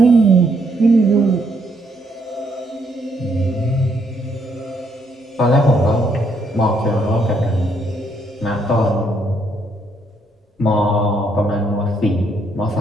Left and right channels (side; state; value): both; normal; correlation 0.72